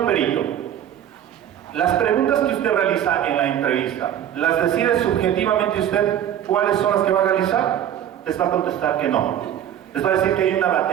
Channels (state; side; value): quieter; left; 10.5 dB